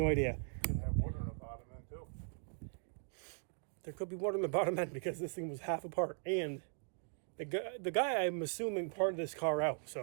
idea. Could have water in the bottom end too. There could be water in the bottom end because this thing was half apart. And the guy I'm assuming parted this car out.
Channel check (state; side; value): silent; left; 52 dB below the other